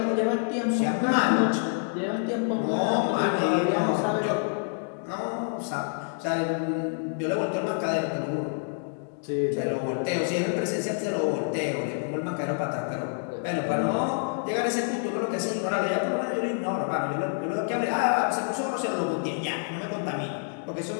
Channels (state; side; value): silent; right; 60 dB below the other